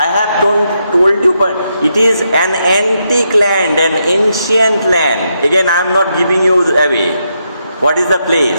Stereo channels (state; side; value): inverted; both; correlation -0.81